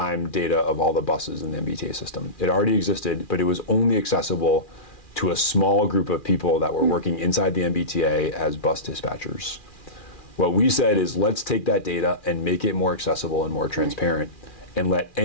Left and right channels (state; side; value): late; right; 2.4 ms